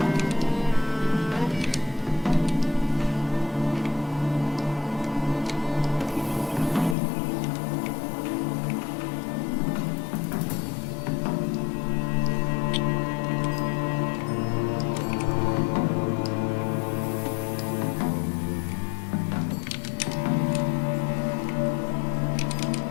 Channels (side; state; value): right; drops out; at 7.0 s